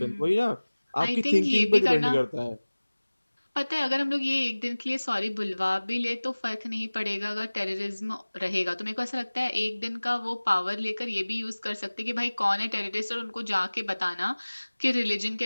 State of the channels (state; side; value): inverted; both; correlation -1.00